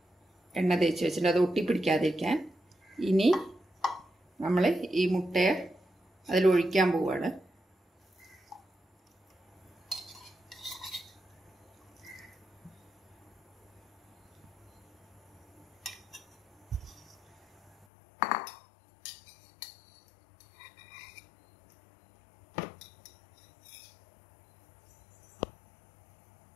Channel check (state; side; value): drops out; right; at 17.9 s